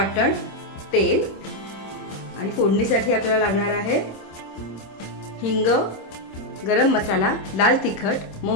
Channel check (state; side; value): late; right; 26 ms